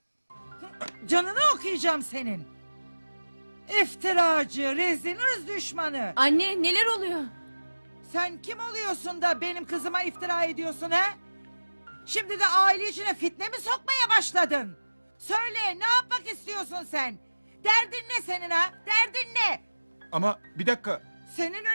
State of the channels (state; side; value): inverted; both; correlation -1.00